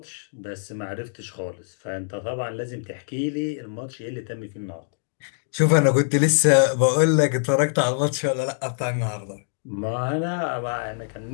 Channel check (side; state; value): right; silent; digital silence